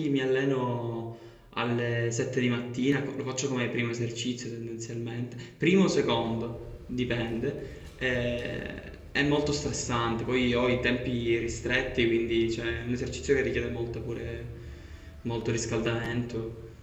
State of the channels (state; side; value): identical; both; correlation 1.00